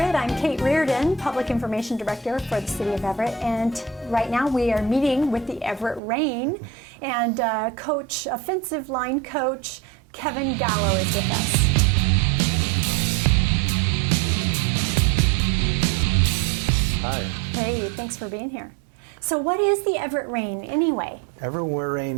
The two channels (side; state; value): left; drops out; at 6.0 s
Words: I'm Kate Reardon, Public Information Director for the City of Everett, and right now we are meeting with the Everett Rain, and offensive line coach Kevin Gallo is with us. Hi. Hey, thanks for being here. So what is the Everett Rain anyway? Everett